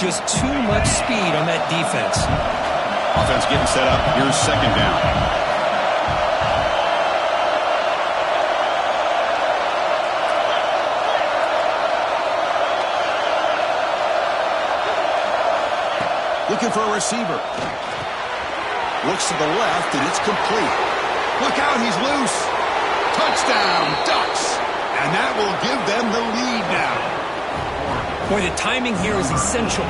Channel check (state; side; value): identical; both; correlation 1.00